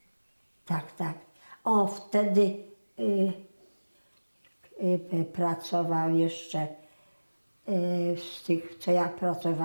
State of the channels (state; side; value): inverted; both; correlation -1.00